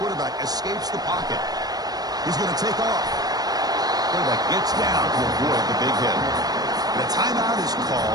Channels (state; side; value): late; left; 0.19 ms